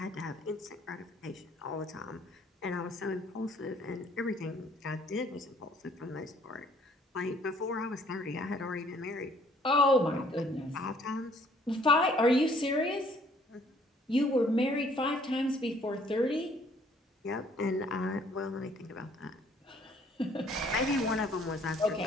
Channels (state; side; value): normal; both; correlation 0.61